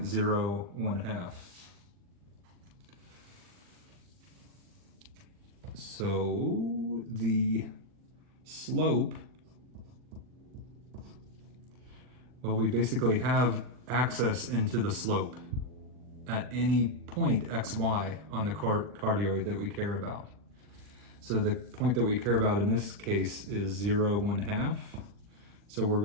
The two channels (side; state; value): left; late; 40 ms